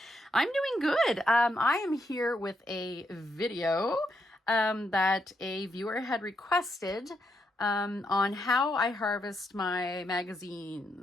I'm doing good. I am here with a video that a viewer had requested on how I harvest my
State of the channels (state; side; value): normal; both; correlation 0.80